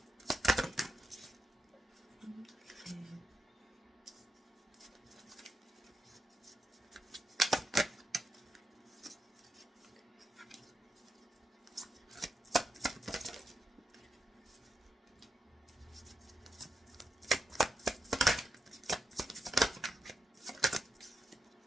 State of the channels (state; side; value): normal; both; correlation 0.86